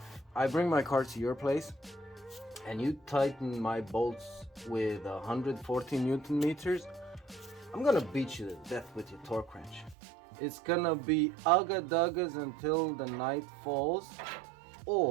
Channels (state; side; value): drops out; left; at 10.0 s